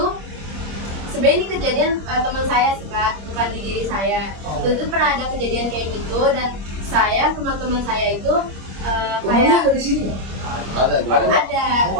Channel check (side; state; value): left; late; 25 ms